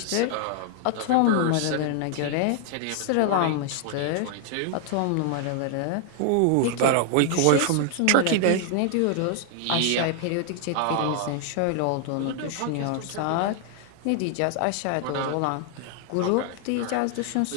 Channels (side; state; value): both; different; correlation 0.00